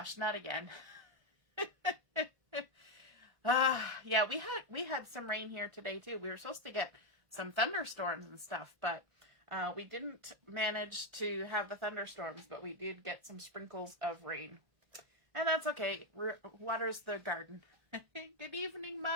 not again. Yeah, we had some rain here today too. We were supposed to get some thunderstorms and stuff, but we didn't manage to have the thunderstorms, but we did get some sprinkles of rain. And that's okay. Waters the garden. Good evening,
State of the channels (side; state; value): left; late; 1.4 ms